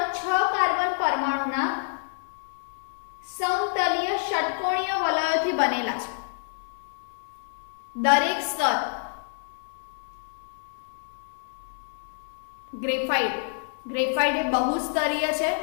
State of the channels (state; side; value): silent; right; 60 dB below the other